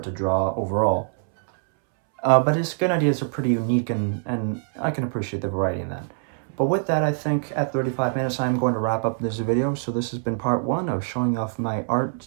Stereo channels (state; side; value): silent; left; 63 dB below the other